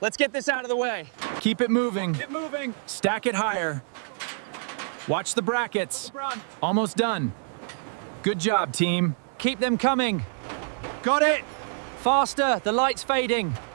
get this out of the way. Keep it moving. Keep moving. Stack it higher. Watch the brackets. Almost done. Good job, team. Keep them coming. Got it. Faster, the light's fading.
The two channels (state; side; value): silent; left; 61 dB below the other